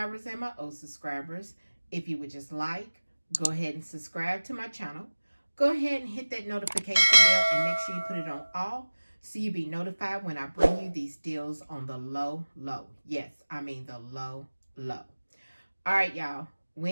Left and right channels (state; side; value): inverted; both; correlation -1.00